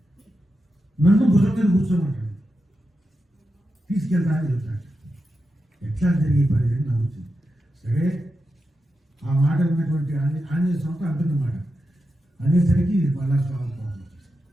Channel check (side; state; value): both; normal; correlation 0.89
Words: నన్ను భుజం మీద కూర్చోమంటాడు, తీసుకెళ్తా అని చెప్తాడు. ఎట్లా జరిగే పని అని నవ్వుతుంది. సరే ఆ మాట విన్నటువంటి ఆంజనేయ స్వామితో అంటున్నమాట అనేసరికి మళ్ళా స్వామి కోపం వచ్చేసింది.